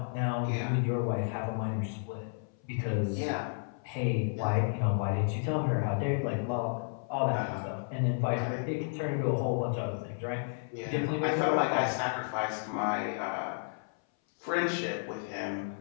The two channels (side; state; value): right; silent; 56 dB below the other